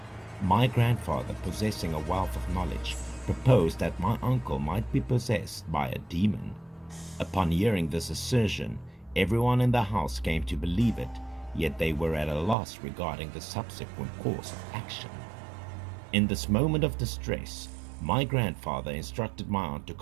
My grandfather, possessing a wealth of knowledge, proposed that my uncle might be possessed by a demon. Upon hearing this assertion, everyone in the house came to believe it, yet they were at a loss regarding the subsequent course of action. In this moment of distress, my grandfather instructed my aunt to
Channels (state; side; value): drops out; left; at 12.6 s